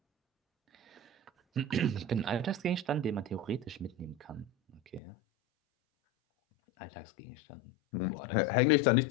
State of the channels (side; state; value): right; drops out; at 5.0 s